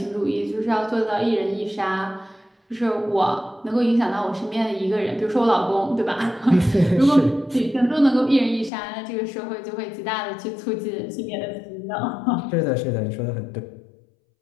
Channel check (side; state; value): right; drops out; at 8.7 s